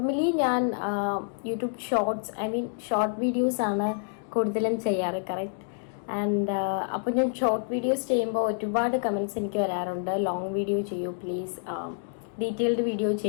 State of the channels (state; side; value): silent; right; digital silence